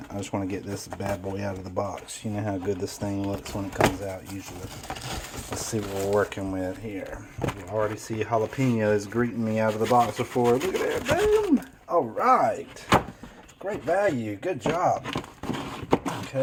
I just want to get this bad boy out of the box. You know how good this thing looks when it comes out usually. Let's see what we're working with here. You already see jalapenos greeting me out of the box before. Look at that, boom! All right. Great value, good job.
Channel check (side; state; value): both; identical; correlation 1.00